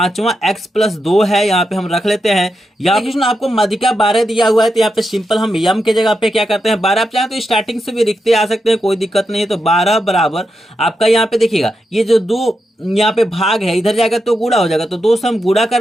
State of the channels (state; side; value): normal; both; correlation 0.86